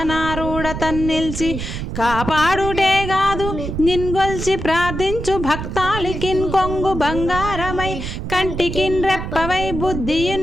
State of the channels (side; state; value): right; noise; rumble, 6 dB below the sound